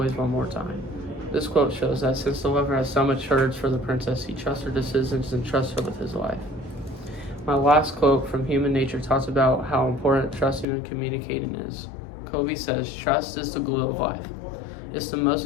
one more time." This quote shows that since the lover has so much courage for the princess, he trusts her decisions and trusts her with his life. My last quote from Human Nature talks about how important trusting and communicating is. Covey says, "Trust is the glue of life. It's the most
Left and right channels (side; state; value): right; drops out; at 10.7 s